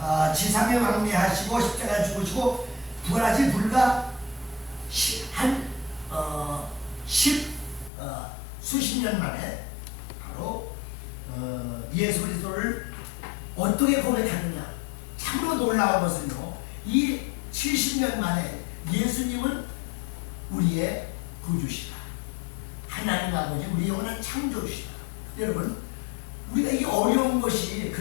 지상에 왕래하시고 십자가 죽으시고 부활하신 불과 수십 년 만에 바로 예수 그리스도를 어떻게 고백하느냐. 참으로 놀라운 것은요, 이 70년 만에 예수님은 우리의 구주시다, 하나님 아버지 우리 영원한 창조주시다. 여러분, 우리가 이 어려운 것이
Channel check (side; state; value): right; drops out; at 7.9 s